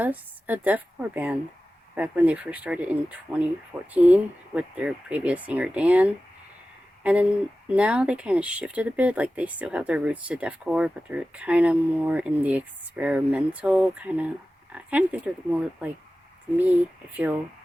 a deathcore band back when they first started in 2014 with their previous singer Dan. And then now they kind of shifted a bit, like they still have their roots to deathcore, but they're kind of more in the experimental I kind of think they're more like, to me, I feel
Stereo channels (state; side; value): normal; both; correlation 0.95